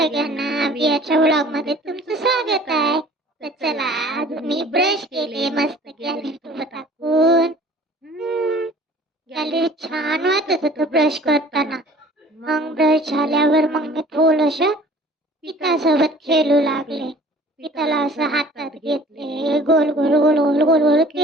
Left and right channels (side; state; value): both; normal; correlation 0.49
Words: बियाच्या vlog मध्ये तुमचं स्वागत आहे. तर चला, आज मी ब्रश केले मस्त गॅलरी टाकून. गॅलरी छान वाटत होतं ब्रश करताना. मग ब्रश झाल्यावर मग मी थोडस पिठासोबत खेळू लागले. पिठाला असं हातात घेतले, गोल गोल गोल गोल गोल गोल